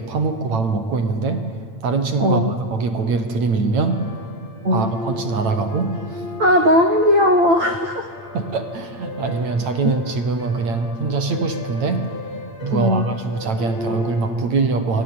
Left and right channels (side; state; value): left; late; 8.9 ms